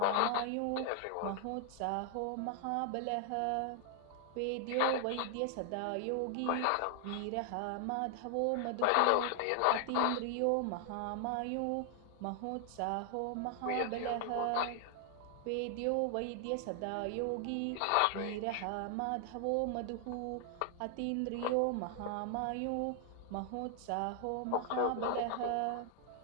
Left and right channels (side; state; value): both; different; correlation 0.00